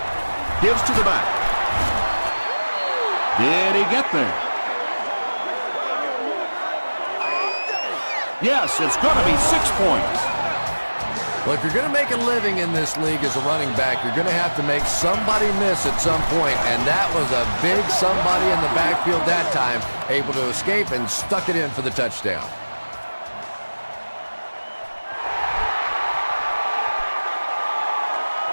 Gives to the back. Did he get there? Yes, it's going to be 6 points. Well, if you're going to make a living in this league as a running back, you're going to have to make somebody miss at some point, and that was a big somebody in the backfield that time, able to escape and stuck it in for the touchdown.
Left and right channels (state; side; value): inverted; both; correlation -1.00